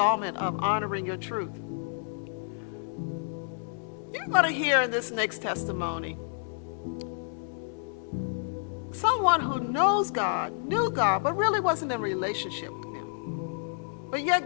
of Honoring Your Truth. You're going to hear in this next testimony someone who knows God, knew God, but really wasn't in a relationship with Him. But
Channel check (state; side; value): silent; right; digital silence